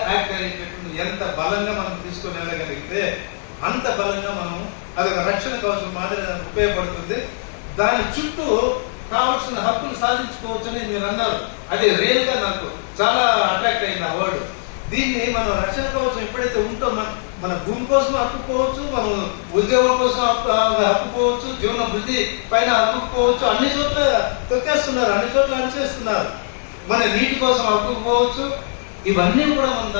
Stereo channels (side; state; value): right; silent; digital silence